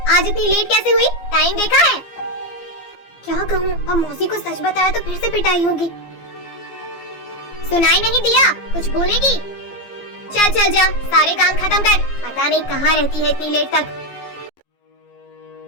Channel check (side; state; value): right; late; 15 ms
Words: आज इतनी लेट कैसे हुई? टाइम देखा है? क्या कहूँ, अब मौसी को सच बताया तो फिर से पिटाई होगी। सुनाई नहीं दिया? कुछ बोलेगी? चल चल जा, सारे काम खत्म कर। पता नहीं कहाँ रहती है इतनी लेट तक।